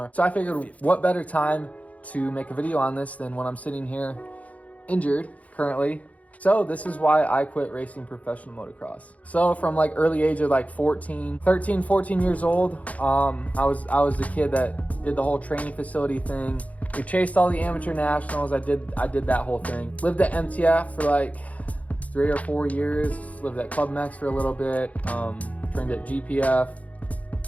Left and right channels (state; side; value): late; right; 0.069 ms